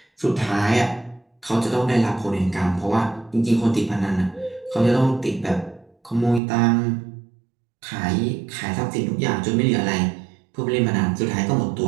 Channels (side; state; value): left; drops out; at 6.4 s